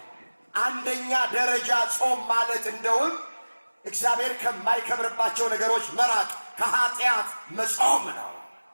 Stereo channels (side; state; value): both; inverted; correlation -1.00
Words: አንደኛ ደረጃ ጾም ማለት እንደውም እግዚአብሔር ከማይከብርባቸው ነገሮች መራቅ፣ ከኃጢአት መጾም ነው።